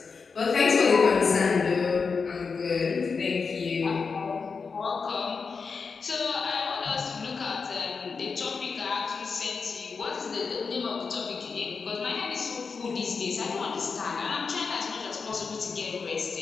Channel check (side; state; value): right; quieter; 5.1 dB